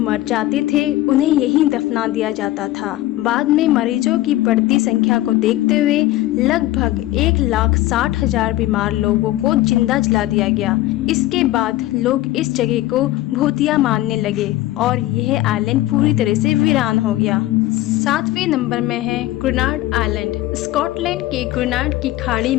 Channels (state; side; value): quieter; right; 16.0 dB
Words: जाते थे उन्हें यहीं दफना दिया जाता था। बाद में मरीजों की बढ़ती संख्या को देखते हुए लगभग 1,60,000 बीमार लोगों को जिंदा जला दिया गया। इसके बाद लोग इस जगह को भूतिया मानने लगे और यह आइलैंड पूरी तरह से वीरान हो गया। 7वें नंबर में है ग्रेनाड आइलैंड। स्कॉटलैंड के ग्रेनाड की खाड़ी